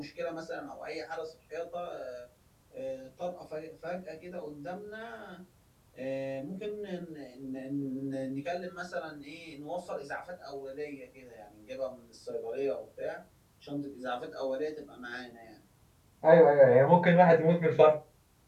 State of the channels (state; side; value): identical; both; correlation 1.00